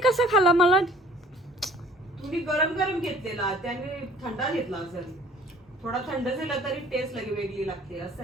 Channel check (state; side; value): normal; both; correlation 0.53